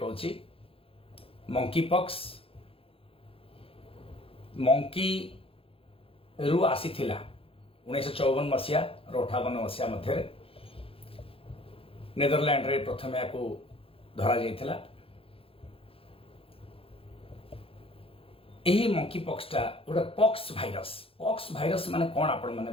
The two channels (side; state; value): right; late; 0.27 ms